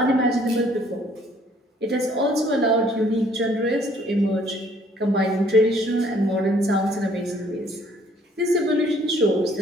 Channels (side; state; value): both; normal; correlation 0.61